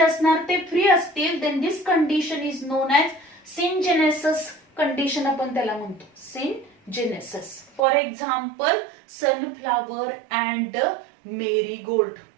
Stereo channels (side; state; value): left; drops out; at 7.8 s